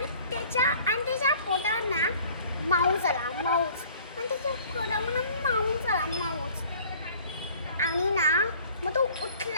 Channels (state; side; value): inverted; both; correlation -0.52